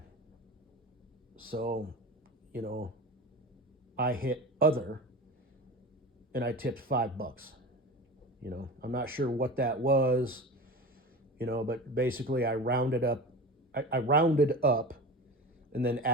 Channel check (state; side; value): normal; both; correlation 0.31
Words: So, I hit other, and I tipped $5. I'm not sure what that was, but basically I rounded up, and then